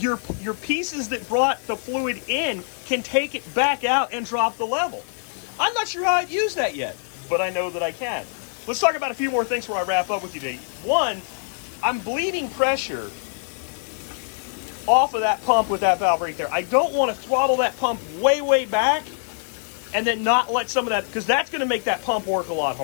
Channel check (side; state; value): right; silent; 63 dB below the other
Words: pieces that brought the fluid in can take it back out and drop the level. I'm not sure how I'd use that yet, but I know that I can. Let's talk about a few more things before I wrap up with you today. One, I'm bleeding pressure off of that pump with that valve right there. I don't want to throttle that pump way, way back and then not let some of that, because that's going to make that pump work a lot